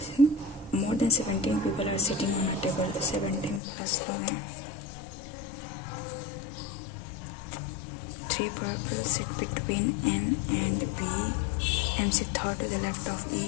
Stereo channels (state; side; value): drops out; right; at 3.6 s